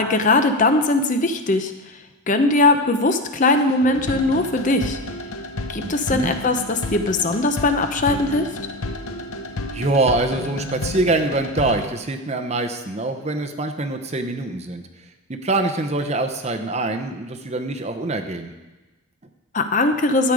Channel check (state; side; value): normal; both; correlation 0.21